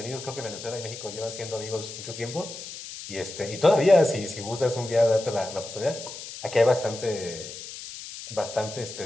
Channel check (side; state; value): left; noise; hiss, 11 dB below the sound